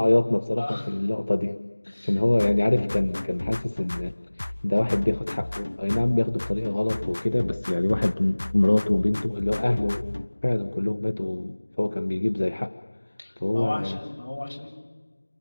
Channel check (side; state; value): both; inverted; correlation -1.00